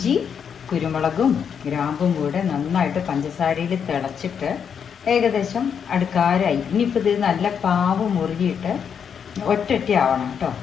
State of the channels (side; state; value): right; quieter; 7.4 dB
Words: കുരുമുളകും ഗ്രാമ്പും കൂടെ നന്നായിട്ട് പഞ്ചസാരയിൽ തിളച്ചിട്ട് ഏകദേശം അടുക്കാരായി. ഇനിയിപ്പോൾ ഇത് നല്ല പാവ് മുറുകിയിട്ട് ഒറ്റ ആവണം കേട്ടോ.